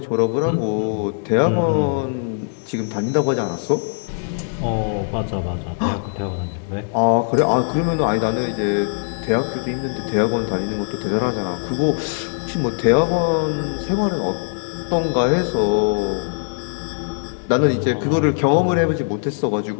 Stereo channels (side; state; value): right; silent; digital silence